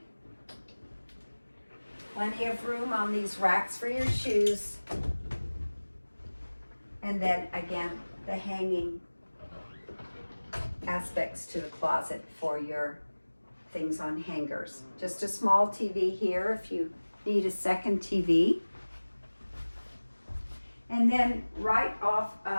plenty of room on these racks for your shoes. And then again, the hanging aspects to the closet for your things on hangers. Just a small TV here if you need a second TV. And then right off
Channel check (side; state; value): both; inverted; correlation -1.00